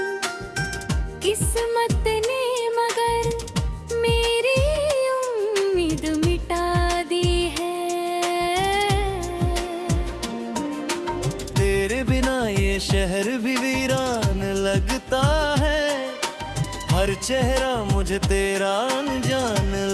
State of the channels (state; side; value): identical; both; correlation 1.00